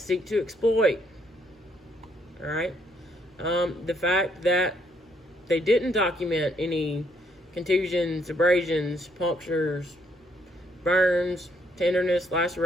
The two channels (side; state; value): both; normal; correlation 0.71